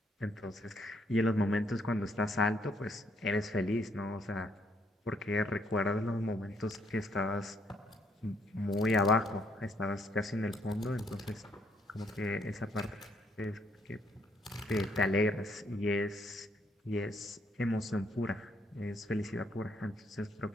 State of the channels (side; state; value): both; normal; correlation 0.70